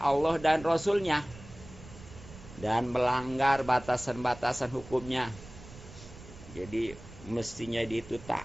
dan Rasulnya dan melanggar batasan-batasan hukumnya, jadi mestinya dia itu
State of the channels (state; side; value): noise; right; rumble, 17 dB below the sound